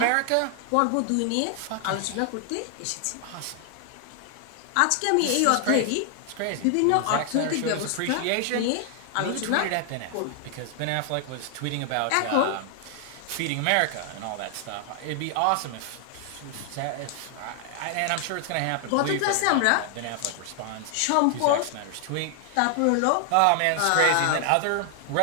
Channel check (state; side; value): different; both; correlation 0.00